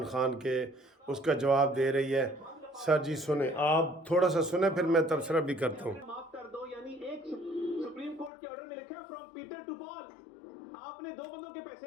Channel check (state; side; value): drops out; right; at 8.3 s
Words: खान के उसका जवाब दे रही है। सर जी सुने, आप थोड़ा सा सुने, फिर मैं तबसरा भी करता हूँ। माफ कर दो, यानी एक सुप्रीम कोर्ट के ऑर्डर में लिखा है फ्रॉम पीटर टू पॉल। आपने दो बंदों के